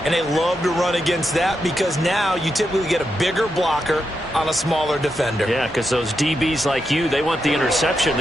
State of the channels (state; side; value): normal; both; correlation 0.85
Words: and they love to run against that because now you typically get a bigger blocker on a smaller defender. Yeah, because those DBs like you, they want the interception.